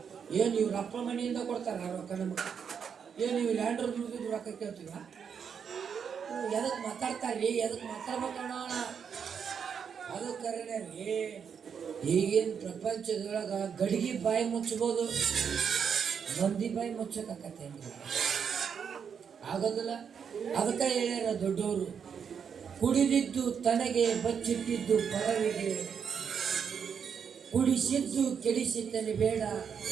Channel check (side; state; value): left; quieter; 7.1 dB